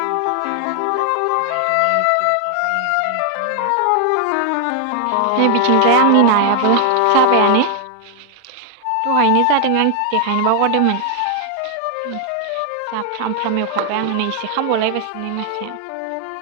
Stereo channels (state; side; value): different; both; correlation 0.00